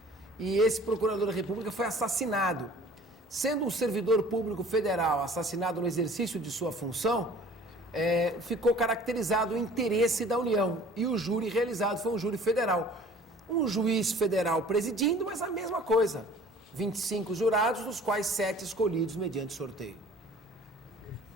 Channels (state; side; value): normal; both; correlation 0.49